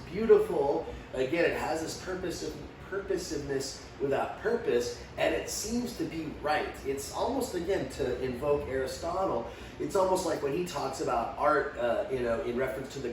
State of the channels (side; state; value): both; identical; correlation 1.00